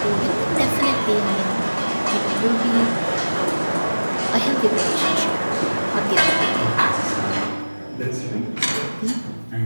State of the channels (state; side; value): inverted; both; correlation -1.00